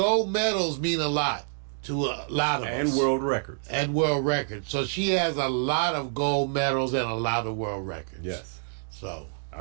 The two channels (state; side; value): silent; left; digital silence